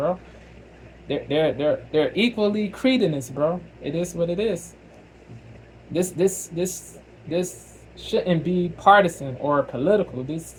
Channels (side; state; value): both; identical; correlation 1.00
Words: They're equally cretinous, bro. It is what it is. This shouldn't be partisan or political.